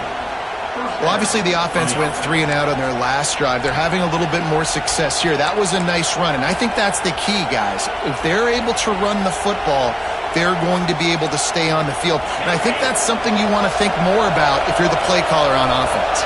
Well, obviously the offense went 3 and out on their last drive. They're having a little bit more success here. That was a nice run, and I think that's the key, guys. If they're able to run the football, they're going to be able to stay on the field. And I think that's something you want to think more about if you're the play caller on offense.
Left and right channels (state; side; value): identical; both; correlation 1.00